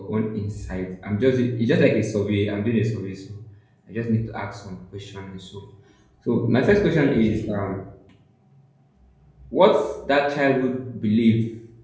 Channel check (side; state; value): both; identical; correlation 1.00